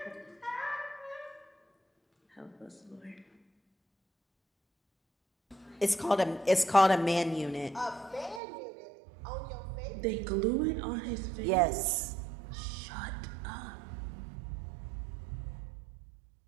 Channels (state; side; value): drops out; left; at 8.4 s